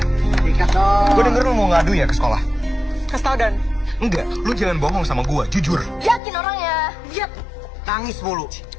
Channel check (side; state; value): right; drops out; at 6.2 s